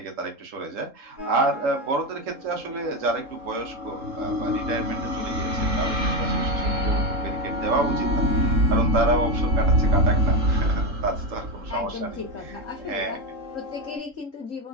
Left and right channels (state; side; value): late; left; 3.7 ms